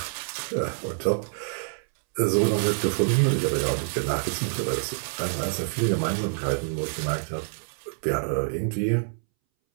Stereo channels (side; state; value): left; silent; 60 dB below the other